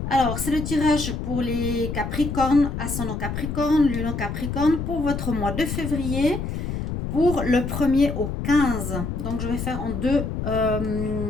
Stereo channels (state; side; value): noise; left; rumble, 4 dB below the sound